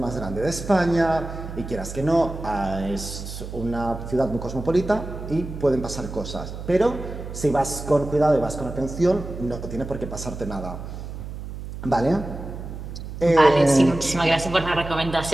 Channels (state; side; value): noise; right; hum, 9 dB below the sound